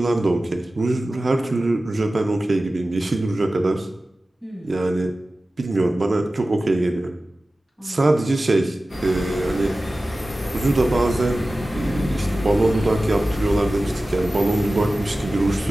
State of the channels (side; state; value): both; normal; correlation 0.96